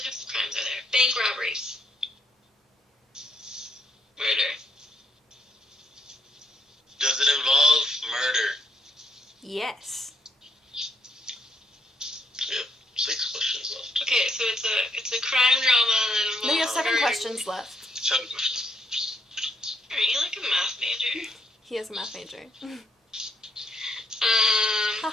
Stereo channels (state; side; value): normal; both; correlation 0.74